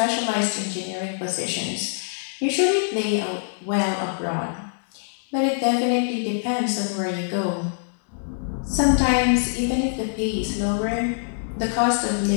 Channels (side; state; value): right; silent; digital silence